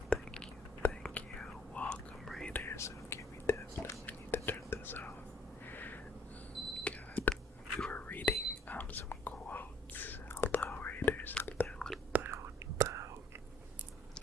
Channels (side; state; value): both; normal; correlation 0.60